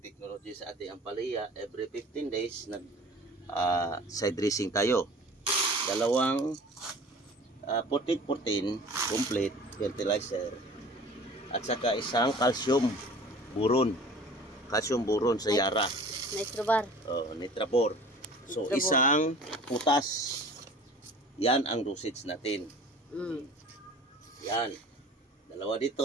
technology sa ating ampalaya. Every 15 days, side dressing tayo. Dalawang 14-14 complete fertilizer. At saka isang calcium buron. Calcium buron sa Yara. Nitrobar. Oh, Nitrabor. So, isang putas. Yan ang dosage natin. Yan. Dalawa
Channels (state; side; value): normal; both; correlation 0.44